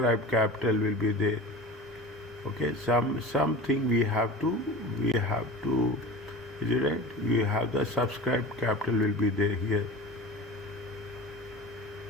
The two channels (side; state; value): left; noise; rumble, 30 dB below the sound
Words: capital will be there. Okay, something we have to is it right? We have the subscribed capital will be there here.